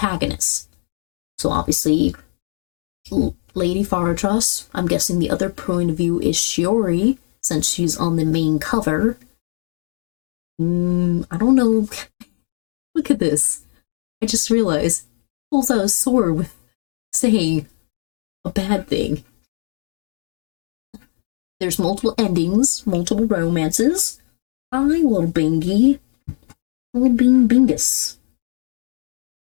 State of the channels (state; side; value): silent; right; 61 dB below the other